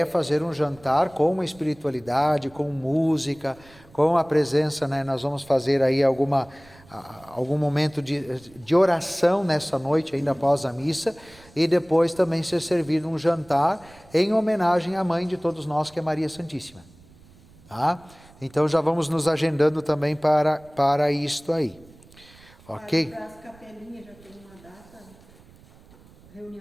é fazer um jantar com espiritualidade, com música, com a presença, né? Nós vamos fazer aí algum momento de oração nessa noite, ainda após a missa, e depois também ser servido um jantar em homenagem à mãe de todos nós, que é Maria Santíssima. Tá? Então já vamos nos agendando também para isto aí. Ok? Para as capelinhas já tem uma data,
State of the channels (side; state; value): right; noise; rumble, 25 dB below the sound